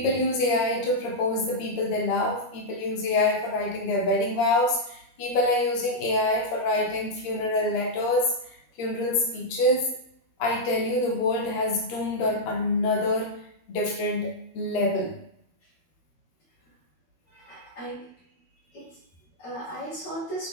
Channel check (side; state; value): right; late; 13 ms